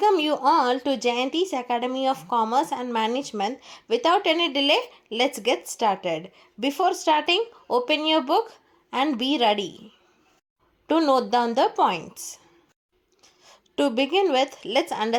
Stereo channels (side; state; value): both; identical; correlation 1.00